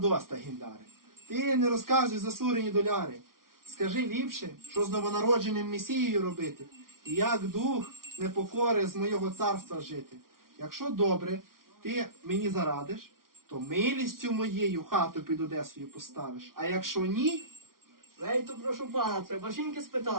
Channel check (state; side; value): late; left; 0.92 ms